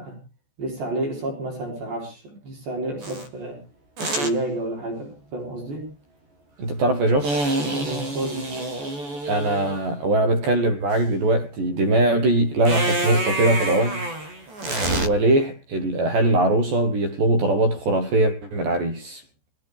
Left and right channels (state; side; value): late; left; 14 ms